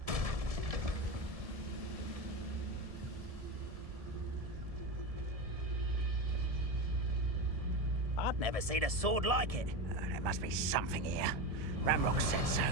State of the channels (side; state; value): left; late; 1.7 ms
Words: I've never seen a sword like it. There must be something here. Ramrock said so.